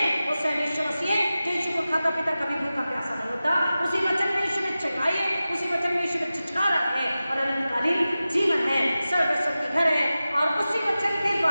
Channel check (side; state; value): both; inverted; correlation -0.95